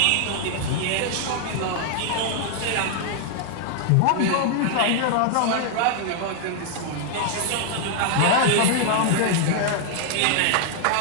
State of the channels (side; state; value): both; different; correlation -0.01